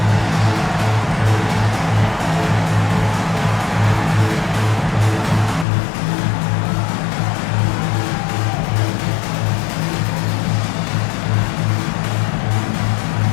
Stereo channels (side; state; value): right; drops out; at 5.7 s